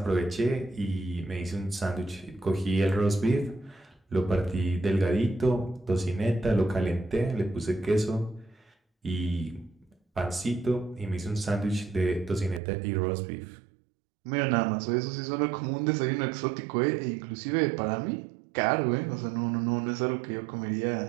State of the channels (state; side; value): drops out; left; at 12.6 s